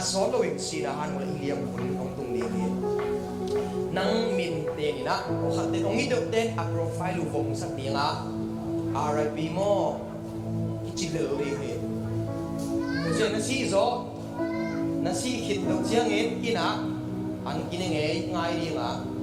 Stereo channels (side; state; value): both; identical; correlation 1.00